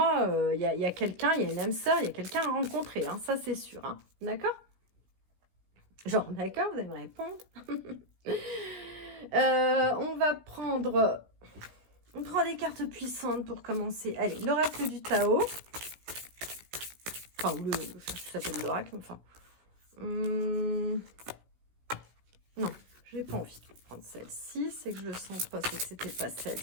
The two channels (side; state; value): left; late; 17 ms